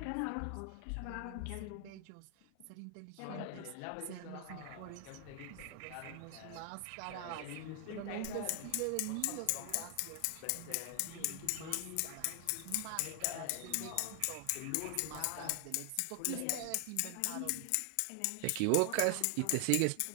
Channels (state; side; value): different; both; correlation 0.00